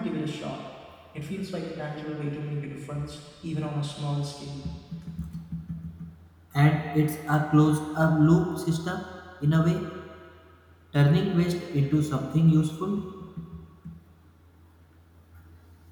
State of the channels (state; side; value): identical; both; correlation 1.00